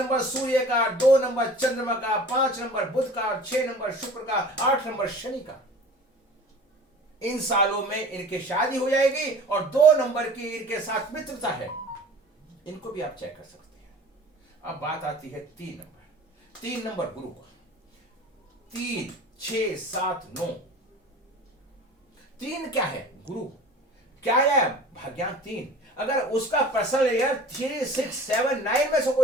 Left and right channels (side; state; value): both; normal; correlation 0.42